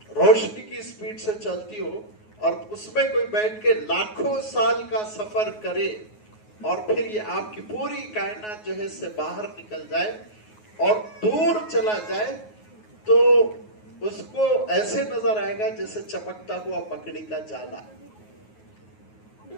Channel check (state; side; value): late; right; 9.4 ms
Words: روشنی کی سپیڈ سے چلتی ہو اور اس میں کوئی بیٹھ کے لاکھوں سال کا سفر کرے اور پھر یہ آپ کی پوری کائنات جو ہے اس سے باہر نکل جائے اور دور چلا جائے، تو اس کو ایسے نظر آئے گا جیسے چمکتا ہوا مکڑی کا جالا،